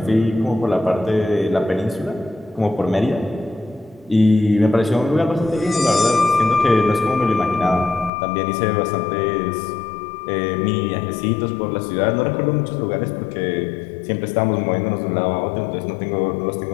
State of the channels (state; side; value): drops out; right; at 8.1 s